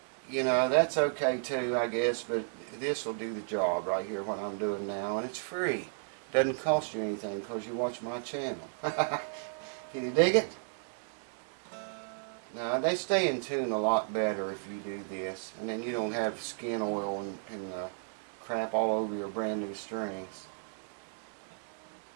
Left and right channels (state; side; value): silent; left; digital silence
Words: You know, that's okay too, I guess, but this will do the job right here, what I'm doing now, and it's free. Doesn't cost you anything because you watch my channel. Can you dig it? Now, they stay in tune a lot better if you do this, and then you don't have skin oil and crap all over your brand new strings.